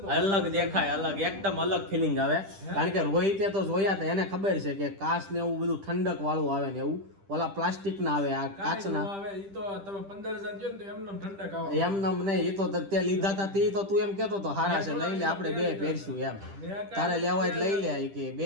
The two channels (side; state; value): left; late; 10 ms